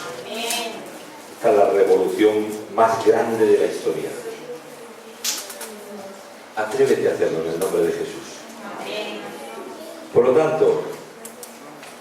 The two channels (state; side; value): identical; both; correlation 1.00